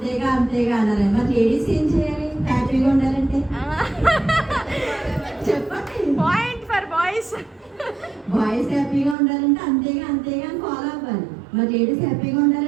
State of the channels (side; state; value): left; drops out; at 9.2 s